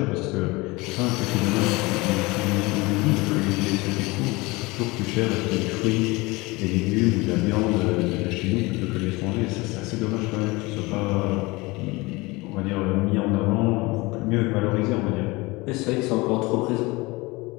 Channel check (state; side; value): quieter; right; 23.4 dB